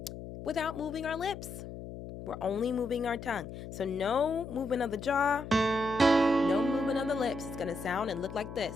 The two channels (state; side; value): noise; left; hum, 11 dB below the sound